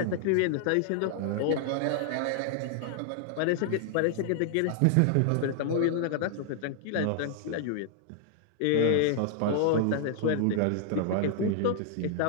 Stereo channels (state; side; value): different; both; correlation -0.01